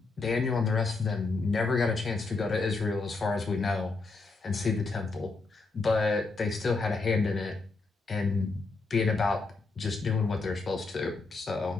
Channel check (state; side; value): quieter; right; 3.8 dB